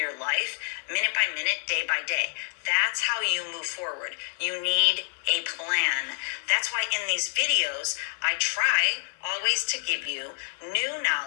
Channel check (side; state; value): right; silent; 57 dB below the other